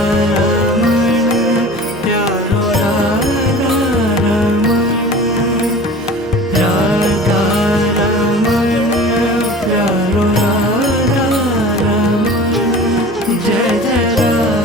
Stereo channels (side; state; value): both; normal; correlation 0.40